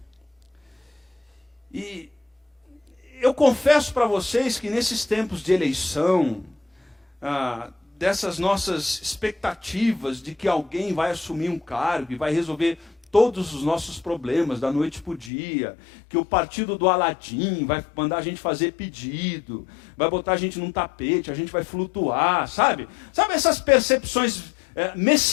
E eu confesso para vocês que nesses tempos de eleição, dessas nossas expectativas de que alguém vai assumir um cargo e vai resolver todos os nossos problemas da noite para o dia, que o partido do Aladim vai mandar a gente fazer pedido, vai botar a gente num tapete, a gente vai flutuar, sabe? Sabe essas percepções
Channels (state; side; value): drops out; right; at 15.3 s